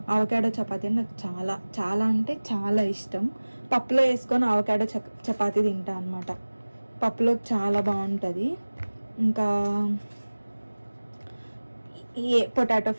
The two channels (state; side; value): inverted; both; correlation -1.00